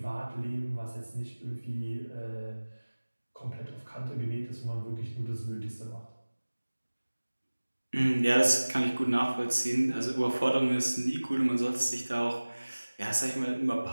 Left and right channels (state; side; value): inverted; both; correlation -1.00